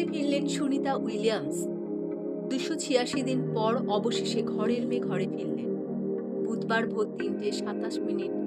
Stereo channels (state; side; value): identical; both; correlation 1.00